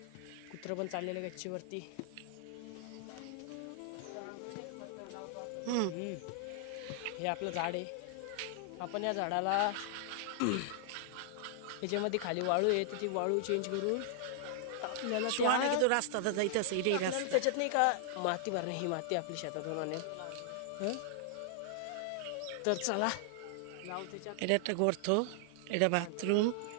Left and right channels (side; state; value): both; different; correlation 0.00